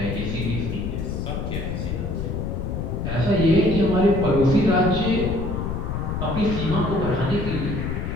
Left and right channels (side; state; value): left; noise; rumble, 3 dB below the sound